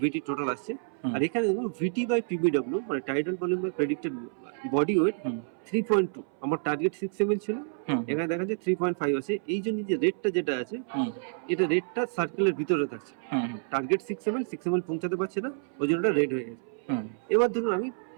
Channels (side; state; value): left; silent; 59 dB below the other